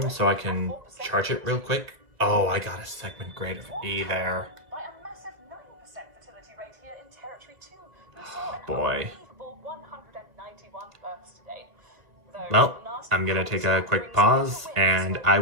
so I can charge it real quick. Oh, I got a segment grade of E there. by a massive 9% fertility rate here in Territory 2. We saw an Boy. unbelievable 191 births today. Though Well, last I'm gonna take a month quick brings pause, the wins and with I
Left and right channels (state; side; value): late; left; 1.9 ms